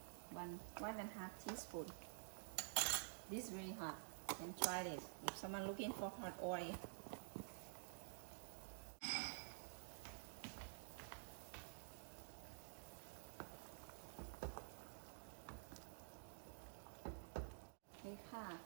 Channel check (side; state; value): left; silent; digital silence